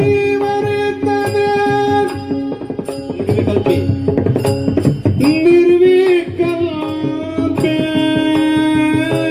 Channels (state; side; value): identical; both; correlation 1.00